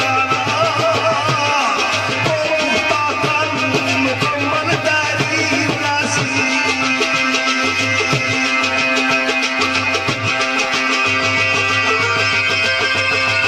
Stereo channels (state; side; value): identical; both; correlation 1.00